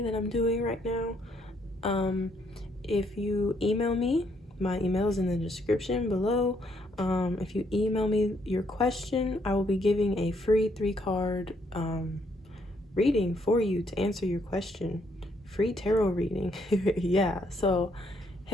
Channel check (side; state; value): both; normal; correlation 0.71